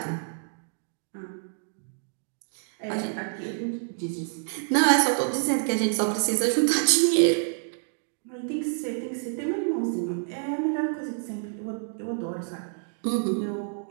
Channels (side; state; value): left; silent; digital silence